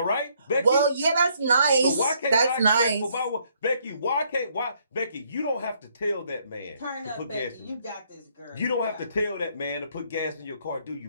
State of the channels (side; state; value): both; inverted; correlation -0.69